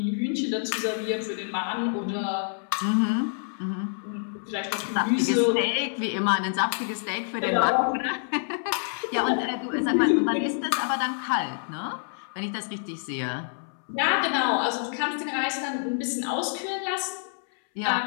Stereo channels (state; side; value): silent; right; 60 dB below the other